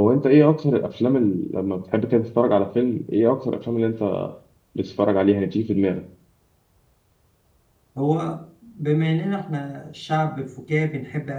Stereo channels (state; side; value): identical; both; correlation 1.00